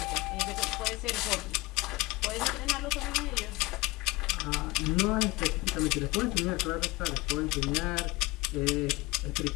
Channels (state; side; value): quieter; right; 22.4 dB